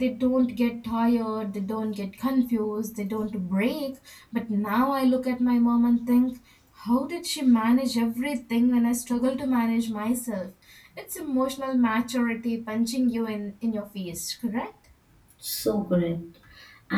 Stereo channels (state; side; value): identical; both; correlation 1.00